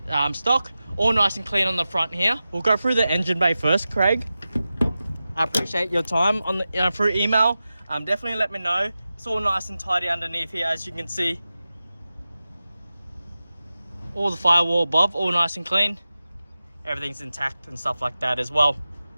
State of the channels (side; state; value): both; inverted; correlation -0.94